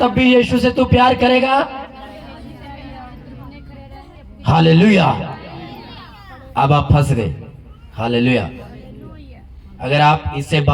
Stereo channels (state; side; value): identical; both; correlation 1.00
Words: भी यीशु से तू प्यार करेगा? हालेलुया। अब आप फंस गए। हालेलुया। अगर आप इससे